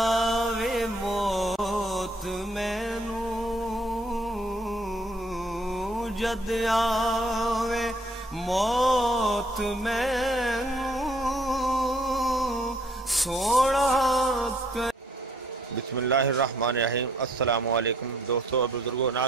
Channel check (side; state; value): both; normal; correlation 0.64